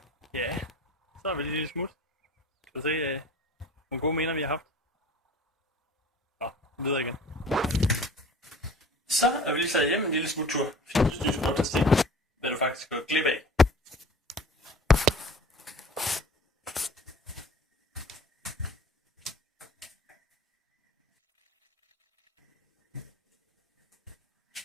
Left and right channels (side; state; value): both; normal; correlation 0.44